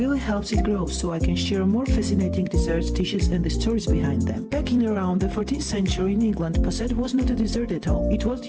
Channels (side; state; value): both; identical; correlation 1.00